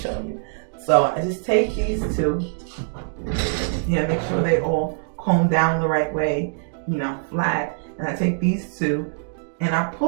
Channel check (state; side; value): silent; left; digital silence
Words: you. So I just take these two, make sure they all comb down the right way, you know, flat. And I take these two and I